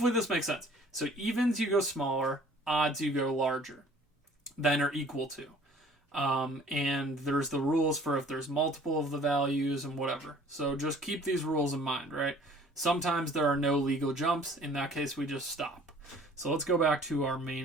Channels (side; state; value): both; normal; correlation 0.53